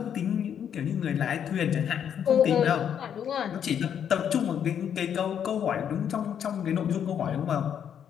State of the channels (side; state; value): right; quieter; 8.7 dB